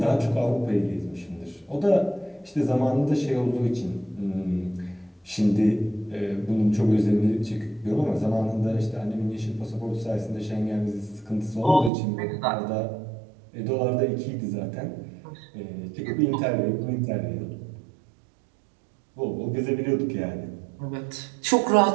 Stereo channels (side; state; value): left; drops out; at 11.9 s